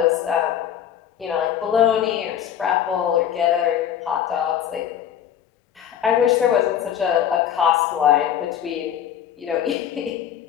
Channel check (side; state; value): right; quieter; 9.6 dB